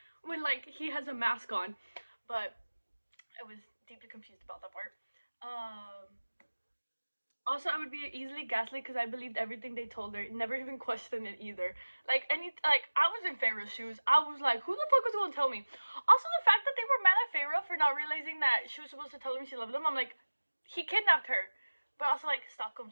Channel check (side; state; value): both; inverted; correlation -1.00